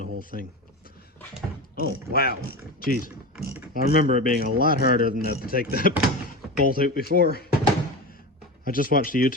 whole thing. Oh, wow. Jeez. I remember it being a lot harder than that to take that bolt out before. I just watched a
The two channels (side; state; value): both; normal; correlation 0.25